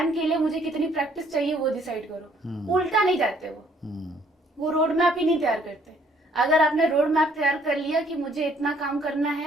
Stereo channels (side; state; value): both; normal; correlation 0.63